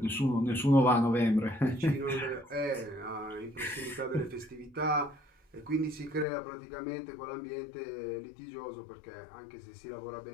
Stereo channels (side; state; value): right; drops out; at 6.2 s